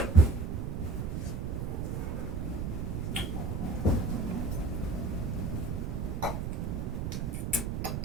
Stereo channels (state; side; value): noise; right; rumble, 1 dB below the sound